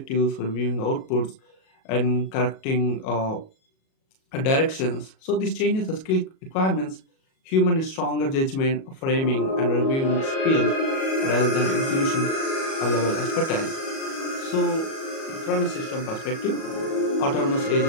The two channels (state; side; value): late; right; 37 ms